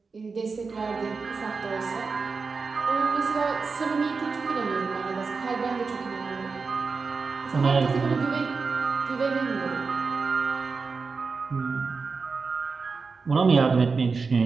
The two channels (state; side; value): quieter; left; 4.7 dB